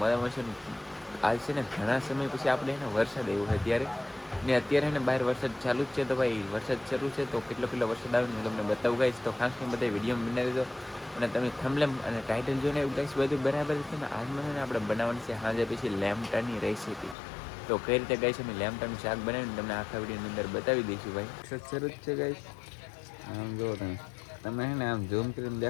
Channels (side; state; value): right; drops out; at 17.2 s